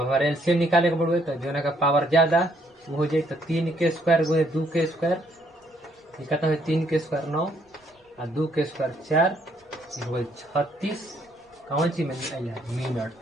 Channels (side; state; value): both; normal; correlation 0.69